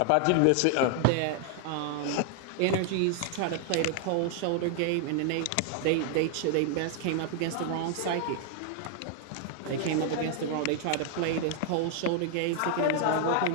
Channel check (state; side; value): different; both; correlation 0.00